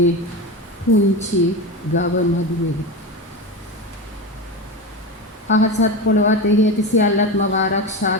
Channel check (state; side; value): normal; both; correlation 0.21